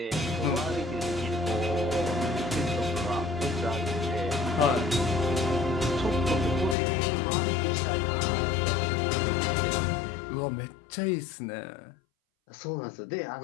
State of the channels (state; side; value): drops out; right; at 6.8 s